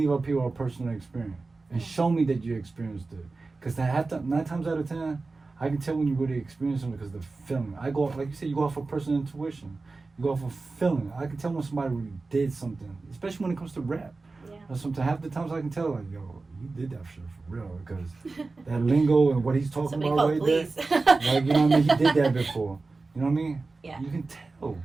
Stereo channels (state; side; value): quieter; left; 3.7 dB